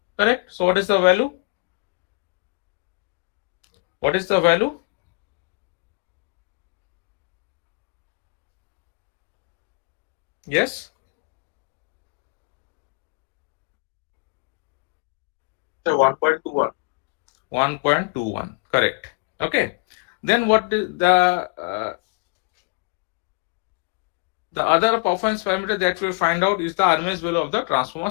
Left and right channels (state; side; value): quieter; right; 31.4 dB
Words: Correct? So what is the value? What is the value? Yes? 1.21. 1.21, correct. Okay. Then what the other performance parameter that we find out is the RMS value of the transformer